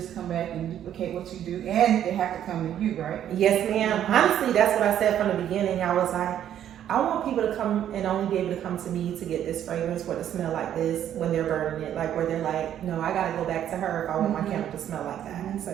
come back and duplicate what you do, and they have to come to you, right? Yes, ma'am. Honestly, that's what I said from the beginning. I was like, I want people to come and only be able to come to me to get this fragrance or to smell like this when they're burning it. Like where they're like, no, I gotta go back to her if I want my candle to smell like that.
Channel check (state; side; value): quieter; left; 10.6 dB